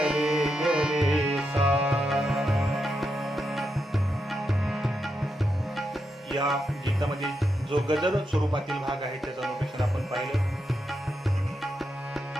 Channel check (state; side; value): normal; both; correlation 0.84